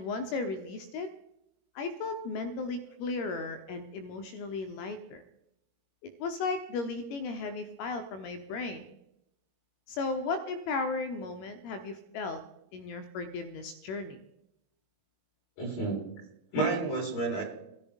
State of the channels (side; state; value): right; late; 21 ms